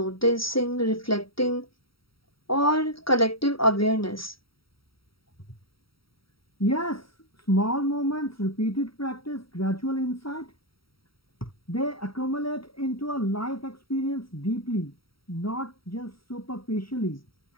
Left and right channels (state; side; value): late; right; 0.75 ms